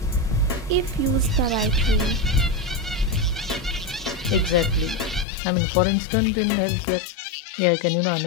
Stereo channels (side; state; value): right; drops out; at 5.2 s